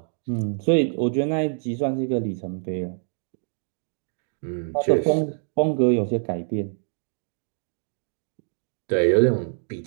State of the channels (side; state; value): left; silent; digital silence